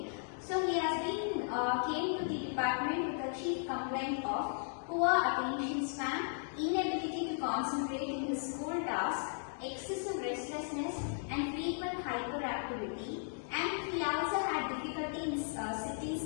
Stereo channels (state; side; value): silent; right; digital silence